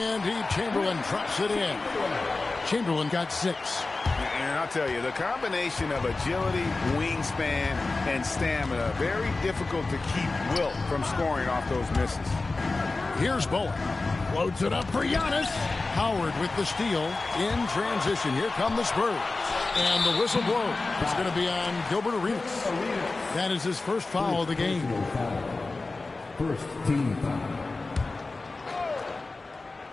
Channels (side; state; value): right; quieter; 3.5 dB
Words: Chamberlain drops it in. Chamberlain got 6. And I'll tell you, the combination of agility, wingspan, and stamina, very difficult to keep Wilt from scoring off those misses. Here's Bowen. Floats it up for Giannis. Howard with the steal. In transition. Here come the Spurs. And the whistle blows. It's going to be on Gilbert Arenas. That is his first foul of the game. First team foul.